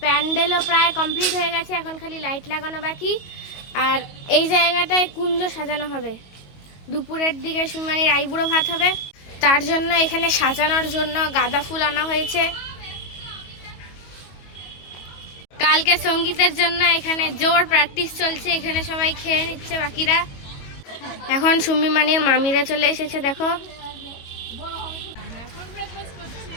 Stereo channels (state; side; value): late; right; 22 ms